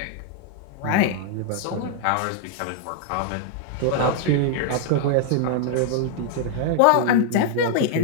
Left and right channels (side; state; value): both; different; correlation 0.00